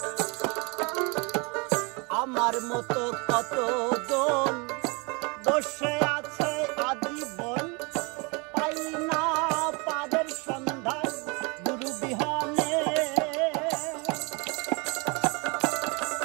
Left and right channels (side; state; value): left; quieter; 30.2 dB